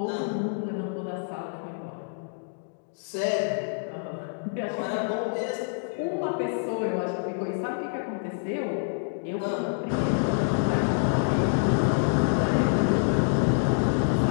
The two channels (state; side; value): silent; right; digital silence